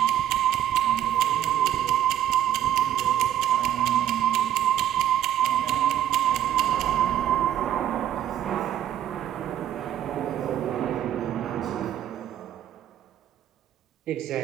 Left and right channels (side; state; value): left; quieter; 11.1 dB